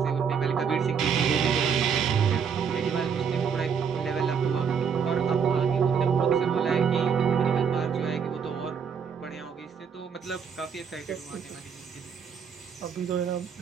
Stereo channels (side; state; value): left; quieter; 6.7 dB